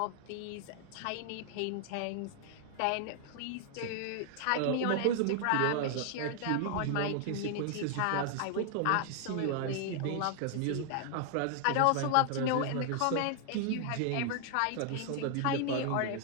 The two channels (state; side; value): different; both; correlation 0.00